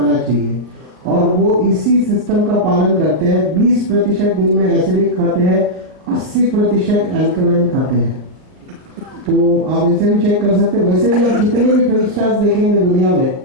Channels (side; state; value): left; late; 39 ms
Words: चाहिए, और वो इसी सिस्टम का पालन करते हैं। 20% दिन में एसिडिक खाते हैं, 80% अल्कलाइन खाते हैं। तो आप इनसे भी चेक कर सकते हैं। वैसे भी आप जितने भी फिल्म स्टार्स देखेंगे दुनिया में,